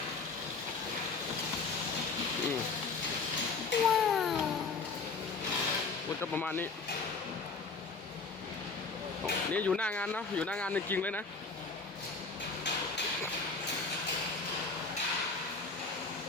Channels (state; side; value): quieter; right; 4.3 dB